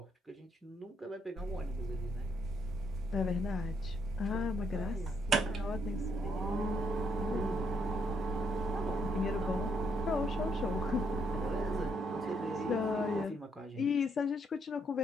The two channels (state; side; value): normal; both; correlation 0.74